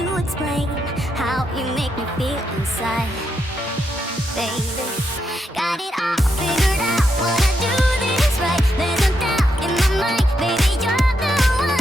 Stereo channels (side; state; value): both; normal; correlation 0.81